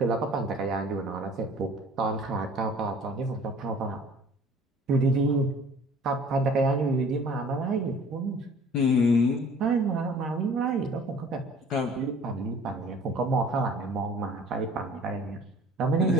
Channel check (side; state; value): both; normal; correlation 0.50